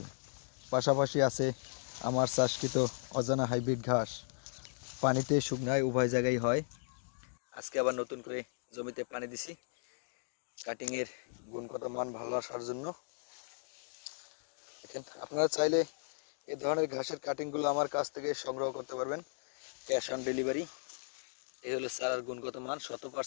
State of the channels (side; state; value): right; silent; digital silence